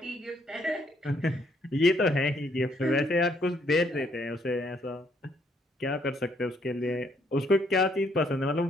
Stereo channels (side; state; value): both; normal; correlation 0.69